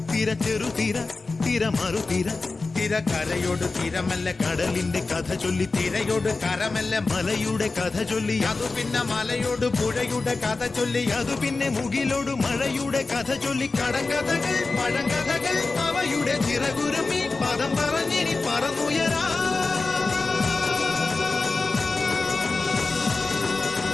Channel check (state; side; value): quieter; right; 3.7 dB